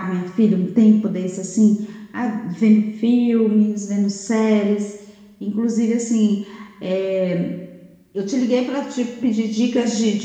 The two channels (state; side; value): identical; both; correlation 1.00